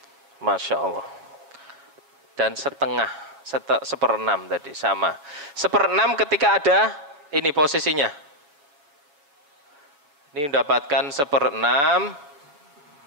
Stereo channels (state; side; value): late; left; 7.0 ms